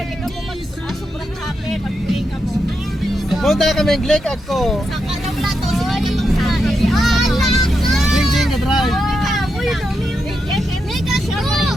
di ka mo sobrang happy. Mag-play ka mo. Punta kami ng click ako. Sa kanawla to, sila niya magsabi. Ah, lako! Jing ka drive. Uy, dumi yung Lake Agco!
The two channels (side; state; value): both; normal; correlation 0.85